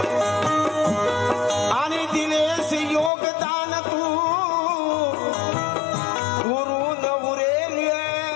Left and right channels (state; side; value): drops out; right; at 3.1 s